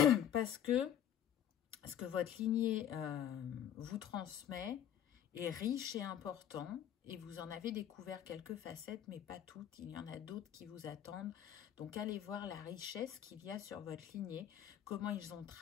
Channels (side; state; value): right; quieter; 10.1 dB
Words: Parce que ce que votre lignée vous transmet est riche et important, et vous en avez découvert quelques facettes, mais pas toutes. Il y en a d'autres qui vous attendent. Donc, allez voir la richesse qu'il y a sur votre lignée, comment ils ont